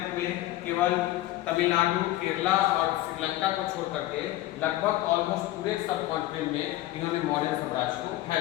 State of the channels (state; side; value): quieter; right; 15.7 dB